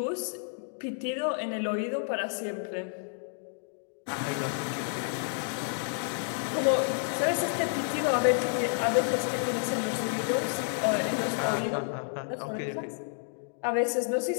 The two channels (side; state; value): right; silent; digital silence